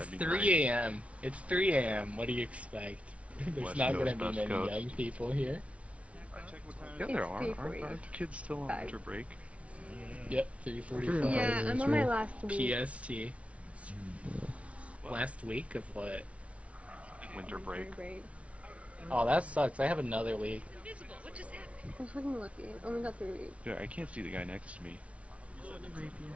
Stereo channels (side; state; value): left; late; 0.063 ms